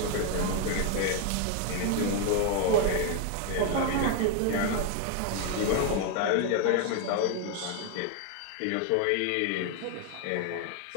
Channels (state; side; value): different; both; correlation 0.01